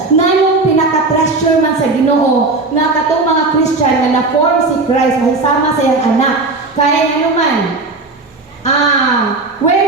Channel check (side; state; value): left; quieter; 3.5 dB